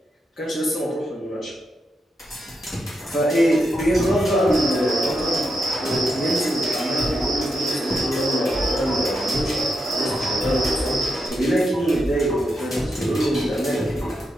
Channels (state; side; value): normal; both; correlation 0.84